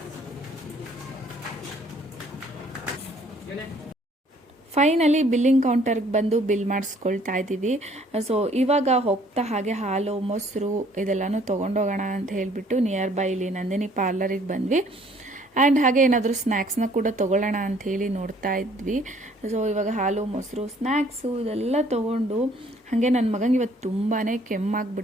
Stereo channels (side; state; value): both; normal; correlation 0.60